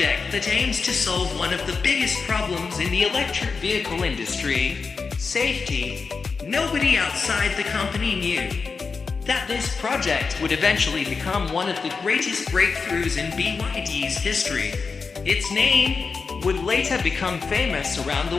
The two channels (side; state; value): right; quieter; 4.9 dB